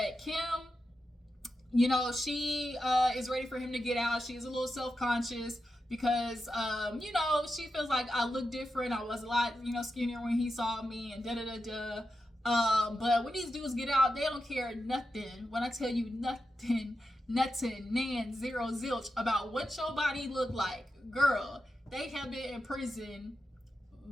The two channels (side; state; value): both; normal; correlation 0.89